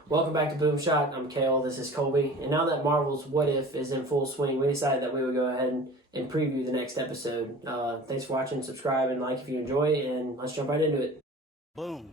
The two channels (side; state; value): both; normal; correlation 0.41